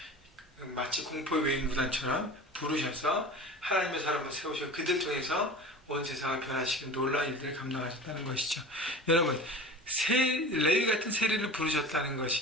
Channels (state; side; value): normal; both; correlation 0.36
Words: 마치 공포의 외인구단처럼 부르셔서 하나님의 사람을 세우셔 그들 통해서 온 세상을 변화시키는 놀라운 일들을 감당하셨다는 것이죠. 여러분, 레위 같은 세리를 부르셨다는